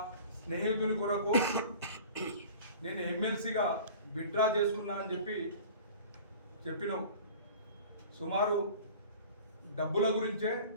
స్నేహితుని కొరకు నేను ఎమ్మెల్సీగా విత్డ్రా చేసుకున్నా అని చెప్పినావు. సుమారు డబ్బుల గురించే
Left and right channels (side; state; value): both; inverted; correlation -0.43